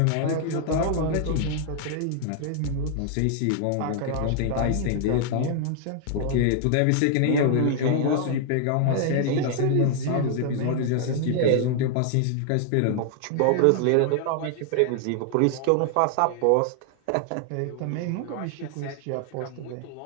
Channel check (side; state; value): both; different; correlation 0.00